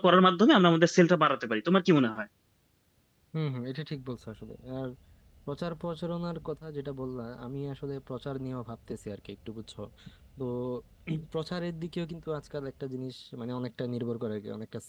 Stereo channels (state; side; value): identical; both; correlation 1.00